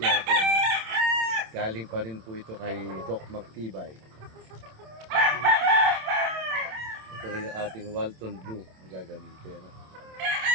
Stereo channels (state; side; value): late; left; 27 ms